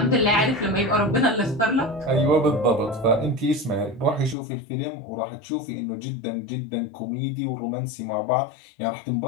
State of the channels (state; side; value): drops out; right; at 4.4 s